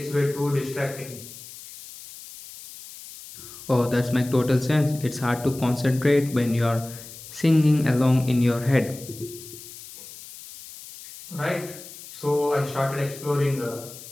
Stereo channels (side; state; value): left; noise; hiss, 15 dB below the sound